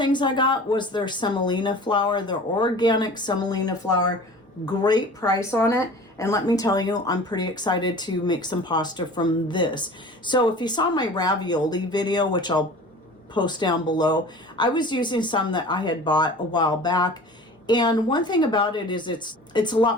I got was their semolina flour, their organic semolina flour. Great price on it. And let me tell you, I'm pretty excited to make some pasta from this. So if you saw my ravioli video, which I'll post down below, I was using some that I had bought a while back. And one thing about it is it's a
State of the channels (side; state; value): both; normal; correlation 0.41